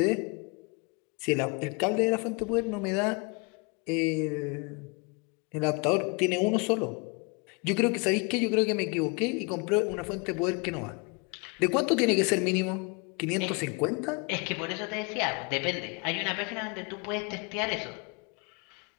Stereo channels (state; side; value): quieter; right; 30.5 dB